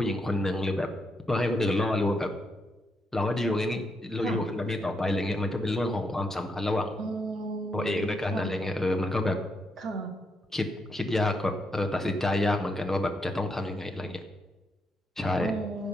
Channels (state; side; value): normal; both; correlation 0.79